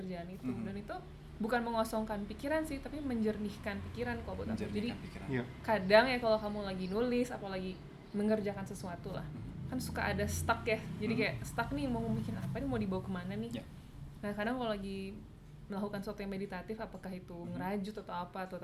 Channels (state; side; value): identical; both; correlation 1.00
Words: itu, dan itu bukan mengosongkan pikiran sih, tapi menjernihkan pikiran kalau buat aku. Jadi menjernihkan pikiran. Iya. kadang ya kalau kamu lagi nulis apalagi mengerjakan sesuatu lah, kan suka ada stuck ya, jadi kayak stuck nih, mau bikin apa nih, mau dibawa kemana nih. Ya. Nah kadang kalau lagi melakukan sesuatu yang meditatif, apakah itu ngerajut atau apa, atau